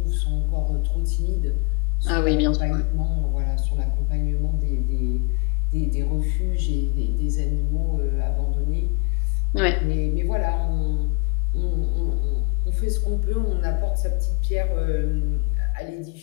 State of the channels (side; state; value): right; quieter; 32.3 dB